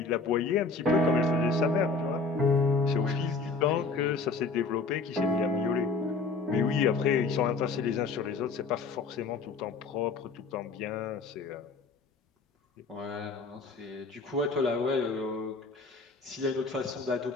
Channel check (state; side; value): quieter; right; 4.1 dB